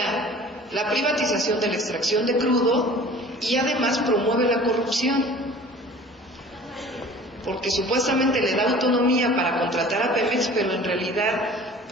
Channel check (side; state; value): both; normal; correlation 0.45